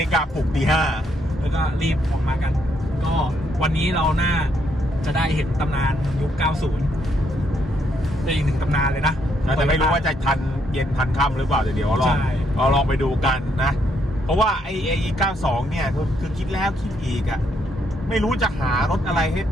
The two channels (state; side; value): normal; both; correlation 0.74